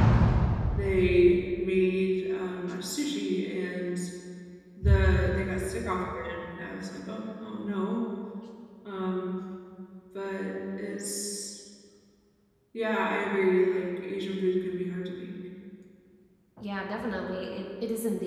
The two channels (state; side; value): identical; both; correlation 1.00